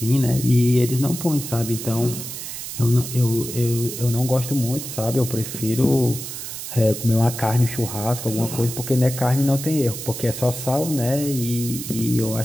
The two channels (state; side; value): noise; right; hiss, 8 dB below the sound